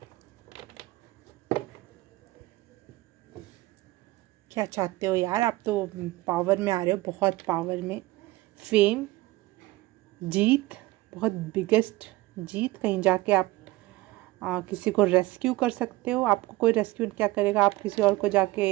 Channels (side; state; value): left; quieter; 19.6 dB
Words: क्या चाहते हो यार, आप तो पावर में आ रहे हो, बहुत पावर में। फेम, जीत, बहुत बिगेस्ट जीत, कहीं जाके आप किसी को रेस्क्यू कर सकते हो। आपको कोई रेस्क्यू क्या करेगा, आप किसी और को